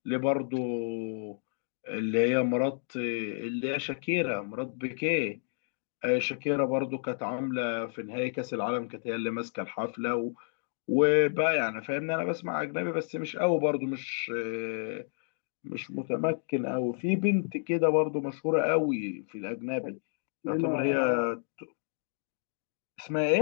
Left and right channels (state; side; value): silent; right; digital silence